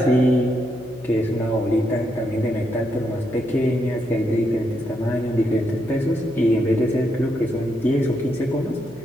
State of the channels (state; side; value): noise; left; hum, 21 dB below the sound